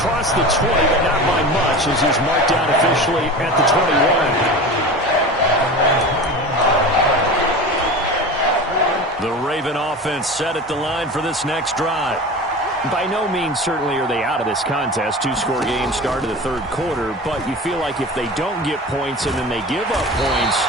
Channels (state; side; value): normal; both; correlation 0.32